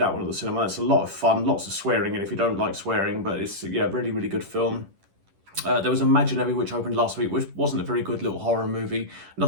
one at the cinema. It's a lot of fun, lots of swearing in if you don't like swearing, but it's, yeah, really, really good film. There was Imaginary, which opened last week, which wasn't a very good little horror movie.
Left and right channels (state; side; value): late; left; 10 ms